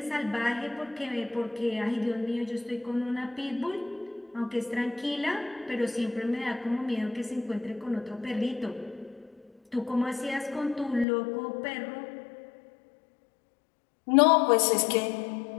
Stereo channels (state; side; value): drops out; right; at 11.1 s